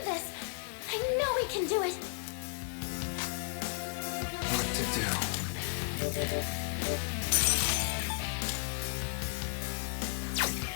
this. I know we can do it. What to do?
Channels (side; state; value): right; silent; digital silence